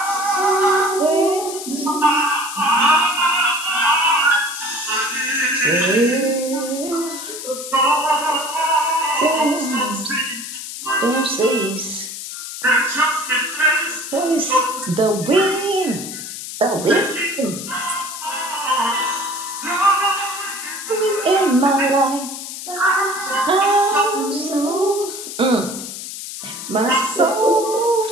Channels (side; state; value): left; noise; hiss, 9 dB below the sound